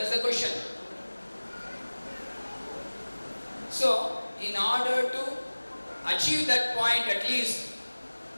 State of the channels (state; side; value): inverted; both; correlation -1.00